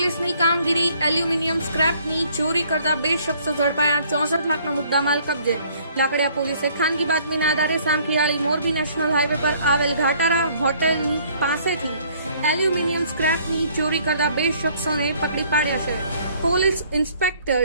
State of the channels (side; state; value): both; inverted; correlation -0.60